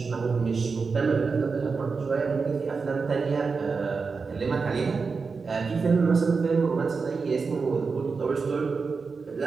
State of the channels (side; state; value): left; quieter; 4.8 dB